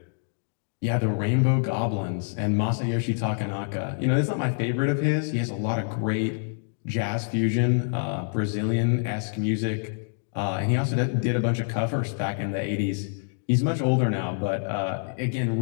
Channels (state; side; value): silent; right; digital silence